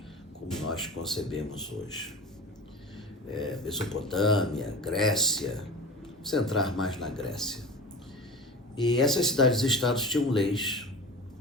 como nós concebemos hoje. Mesopotâmia, Grécia, vamos entrar mais na Grécia. E essas cidades-estados tinham leis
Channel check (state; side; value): normal; both; correlation 0.33